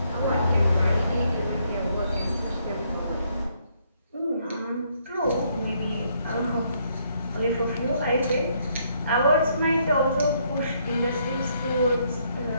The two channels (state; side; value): inverted; both; correlation -0.71